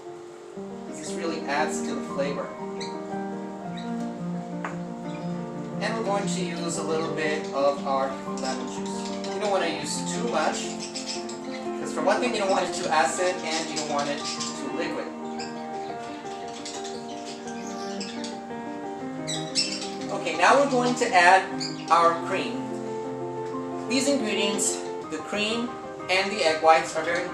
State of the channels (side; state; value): both; identical; correlation 1.00